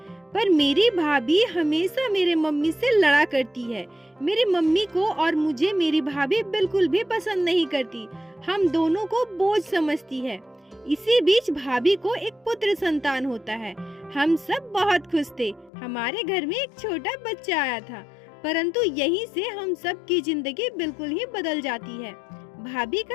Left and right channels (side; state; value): right; drops out; at 15.7 s